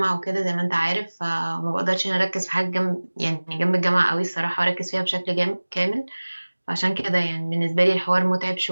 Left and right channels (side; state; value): both; inverted; correlation -1.00